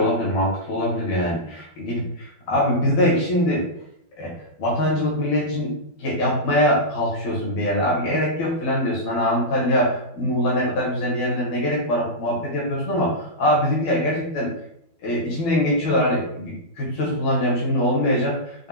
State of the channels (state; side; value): late; right; 12 ms